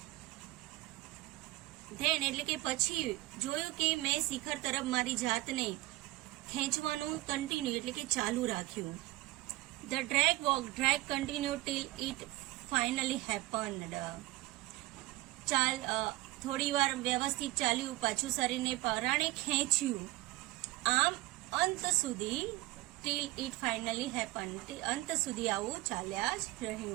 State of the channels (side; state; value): left; quieter; 19.0 dB